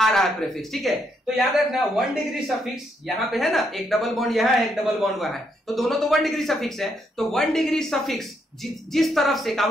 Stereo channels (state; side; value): normal; both; correlation 0.76